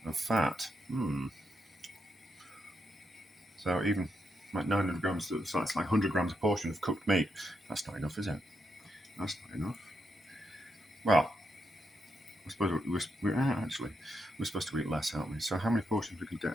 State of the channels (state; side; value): normal; both; correlation 0.82